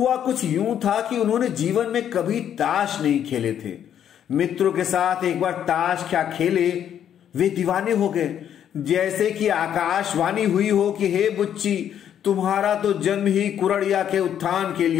कुछ यूं था कि उन्होंने जीवन में कभी ताश नहीं खेले थे। मित्रों के साथ एक बार ताश क्या खेले, वे दीवाने हो गए। जैसे कि आकाशवाणी हुई हो कि हे बुच्ची, तुम्हारा तो जन्म ही कुड़ड़िया के उत्थान के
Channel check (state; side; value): quieter; right; 9.6 dB